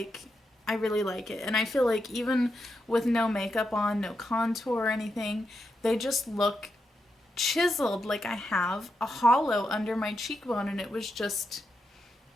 I really like it. And I feel like even with no makeup on, no contour or anything, they just look chiseled, like I have a hollow under my cheekbone. And it was just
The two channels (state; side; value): normal; both; correlation 0.85